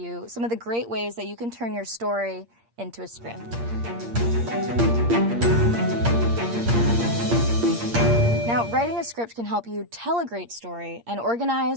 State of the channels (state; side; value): late; left; 8.6 ms